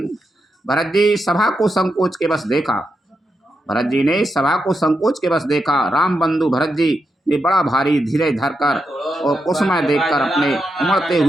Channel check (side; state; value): both; normal; correlation 0.85